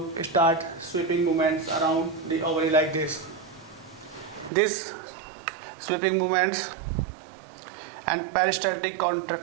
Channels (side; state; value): left; drops out; at 4.5 s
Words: start sweeping movements around the ovary like this. These sweeping movements and peristaltic